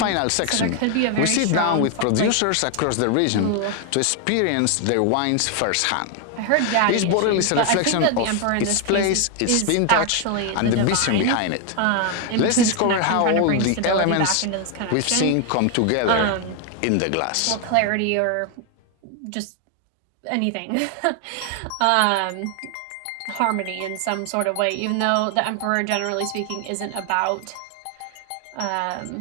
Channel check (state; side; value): different; both; correlation 0.01